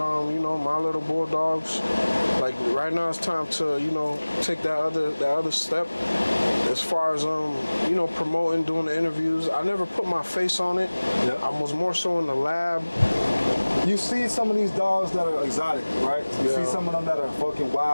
you know, My Little Bulldogs. Like right now, it's time to, you know, take that other step. As far as you know, promoting, doing the interviews, I never put my face on it. Yeah. I was more so in the lab. You see some of these dogs that are exotic, right? You see some of them that are fucking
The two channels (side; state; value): both; inverted; correlation -1.00